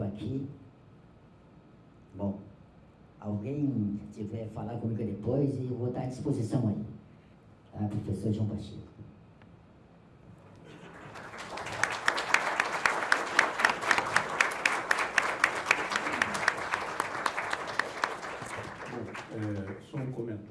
aqui. Bom, alguém tiver falar comigo depois, e eu vou estar à disposição aí. Tá, professor João Pacheco. Só um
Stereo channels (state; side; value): identical; both; correlation 1.00